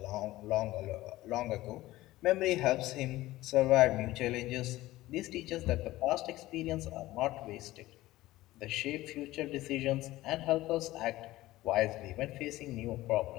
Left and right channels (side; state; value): right; quieter; 17.1 dB